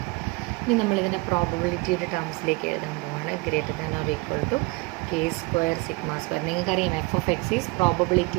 ഇനി നമ്മളിതിൻ്റെ പ്രോബബിലിറ്റിയുടെ ടേംസിലേക്ക് എഴുതാൻ പോവാണ്. Greater than or equal to K square sigma square. നിങ്ങൾക്കറിയാം f of X is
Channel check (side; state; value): left; quieter; 25.6 dB